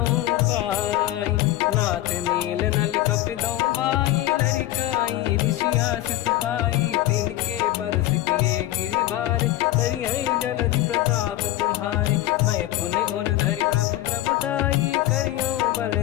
पाई नाथ नील नल कपिदौ बाई लड़काई ऋषि आशीष पाई तिनके परस किए गिरि भारे तरिहै जलधि प्रताप तुम्हारे मैं पुने और धरि प्रभु प्रभुताई करियो बल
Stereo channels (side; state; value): right; quieter; 14.9 dB